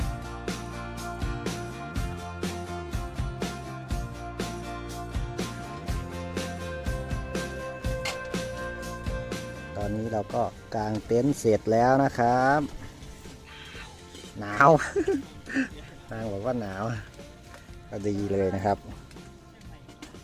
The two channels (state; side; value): identical; both; correlation 1.00